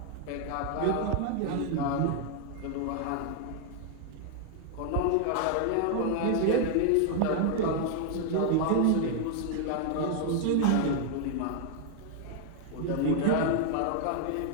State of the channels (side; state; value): both; different; correlation 0.00